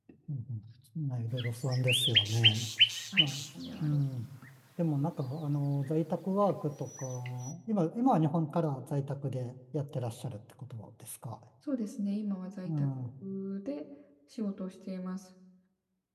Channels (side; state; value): both; identical; correlation 1.00